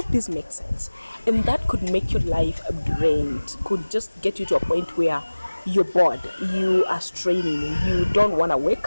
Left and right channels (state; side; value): inverted; both; correlation -1.00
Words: this makes sense. And that could make your life drained, could just get you to a point where you're bored, you are straining, you don't want to